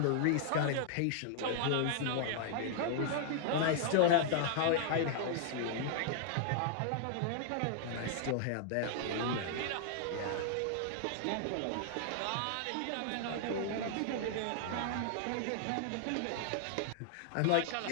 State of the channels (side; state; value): both; different; correlation -0.01